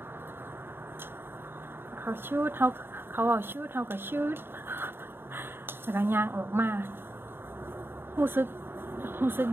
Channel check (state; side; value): late; left; 0.11 ms